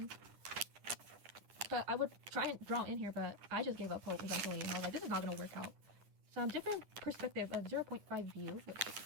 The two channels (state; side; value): late; left; 9.8 ms